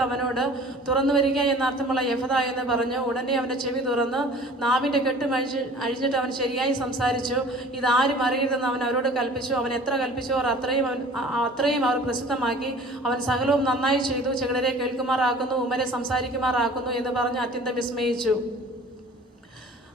അവനോട്, തുറന്നു വരിക എന്നർത്ഥമുള്ള യഫത എന്ന് പറഞ്ഞു. ഉടനെ അവന്റെ ചെവി തുറന്ന് നാവിന്റെ കെട്ടും അഴിഞ്ഞിട്ട് അവൻ ശരിയായി സംസാരിച്ചു. ഇതാരും അറിയരുതെന്ന് അവൻ അവരോട് കൽപ്പിച്ചു. അവൻ എത്ര കൽപ്പിച്ചോ അത്രയും അവർ പ്രസിദ്ധമാക്കി. അവൻ സകലവും നന്നായി ചെയ്തു. ചെകിടരെ കേൾക്കുമാറാക്കുന്നു, ഉമ്മരെ സംസാരിക്കുമാറാക്കുന്നു എന്ന് പറഞ്ഞ് അത്യന്തം വിസ്മയിച്ചു.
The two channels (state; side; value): normal; both; correlation 0.46